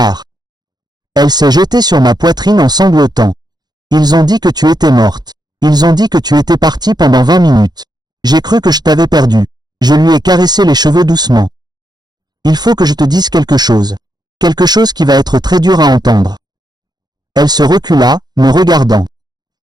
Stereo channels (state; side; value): late; left; 0.20 ms